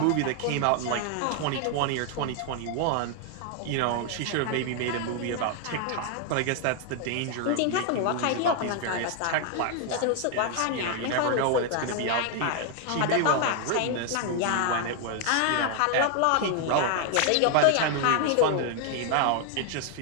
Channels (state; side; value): different; both; correlation 0.00